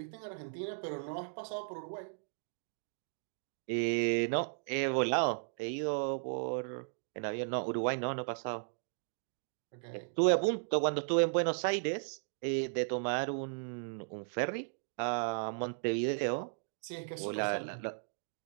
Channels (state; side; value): silent; left; digital silence